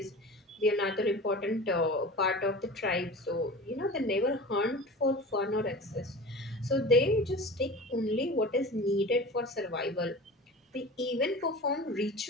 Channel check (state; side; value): normal; both; correlation 0.35